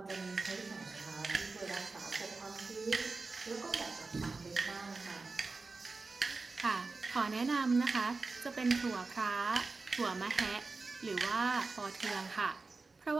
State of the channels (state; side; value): quieter; left; 3.9 dB